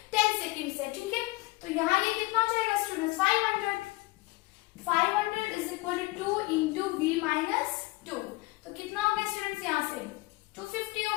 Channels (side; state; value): right; quieter; 21.6 dB